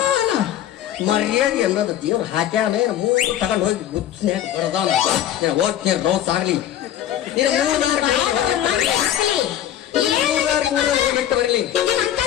ಮರ್ಯಾದೆ ಅನ್ನೋದು ದೇವ್ರು ಹಾಕ್ಯಾನ. ಮೂರು ತಗೊಂಡು ಹೋಗಿ ಬುದ್ಧಿನ್ಯಾಗ ಬಡದಾನ. ಹೋಗ್ತೀನಿ ರೋಸ್ ಆಗ್ಲಿ, ಬಿಟ್ಟು ಬರಲಿ,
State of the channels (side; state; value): right; quieter; 11.4 dB